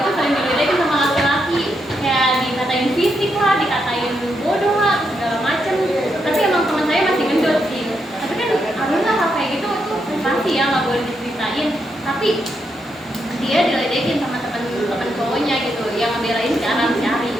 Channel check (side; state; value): both; normal; correlation 0.81